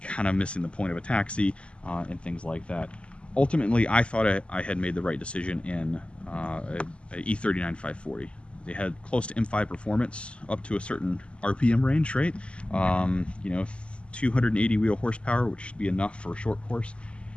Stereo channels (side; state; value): right; late; 0.055 ms